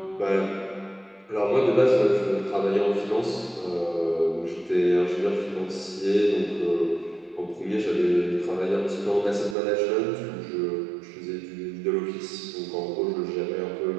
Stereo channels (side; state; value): left; drops out; at 9.6 s